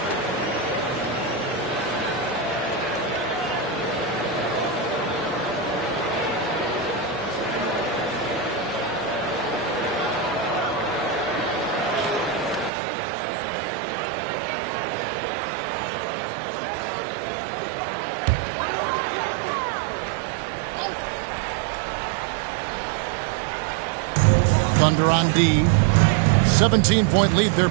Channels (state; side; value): drops out; left; at 12.7 s